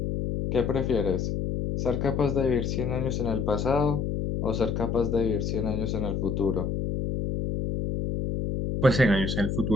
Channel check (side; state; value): left; noise; hum, 1 dB below the sound